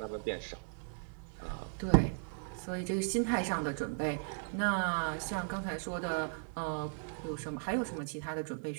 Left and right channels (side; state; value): left; silent; 53 dB below the other